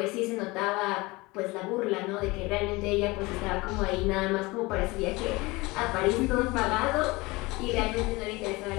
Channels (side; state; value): right; quieter; 23.0 dB